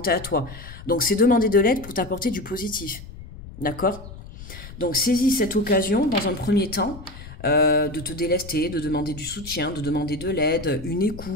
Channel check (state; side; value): noise; left; rumble, 15 dB below the sound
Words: à toi. Donc, c'est demander de l'aide pour t'apporter du positif. D'accord? Donc, saisis cette occasion dans un premier temps de te délester, de demander du soutien, de demander de l'aide, une